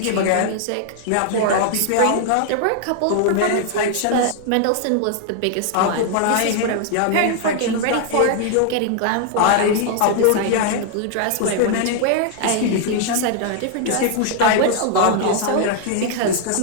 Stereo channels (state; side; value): different; both; correlation 0.00